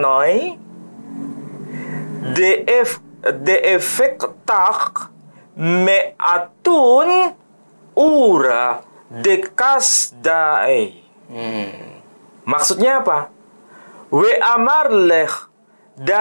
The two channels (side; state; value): both; inverted; correlation -1.00